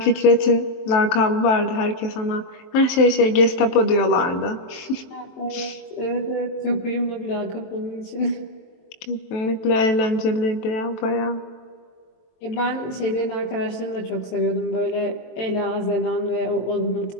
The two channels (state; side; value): late; right; 23 ms